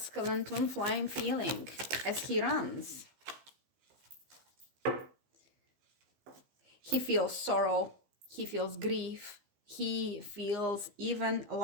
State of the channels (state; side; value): late; left; 15 ms